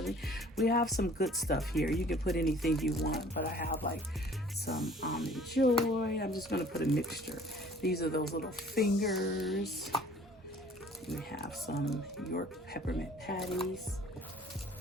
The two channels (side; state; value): both; normal; correlation 0.52